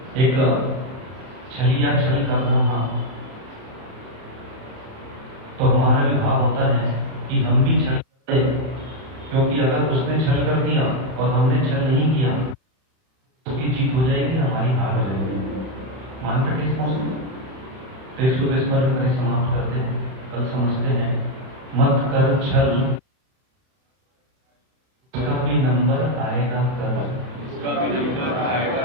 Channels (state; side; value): late; left; 31 ms